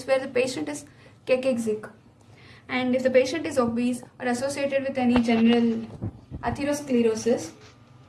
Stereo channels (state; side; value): identical; both; correlation 1.00